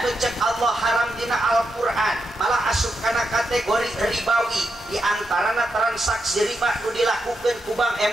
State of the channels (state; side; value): normal; both; correlation 0.85